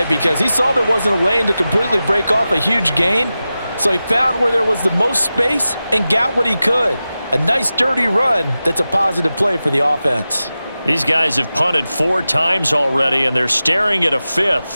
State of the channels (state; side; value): inverted; both; correlation -0.94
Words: because he saw there wasn't a lane to completely break off a huge gain. So he found where there was the most space and got what he could. A nice dirty run that's a positive play for the offense. These guys have punted 4 times already, and they're staring at a